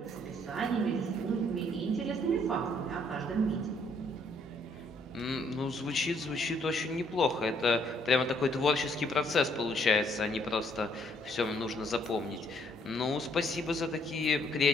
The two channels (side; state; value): both; normal; correlation 0.67